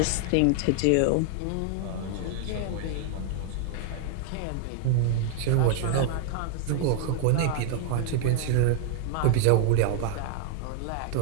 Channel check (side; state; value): both; different; correlation 0.00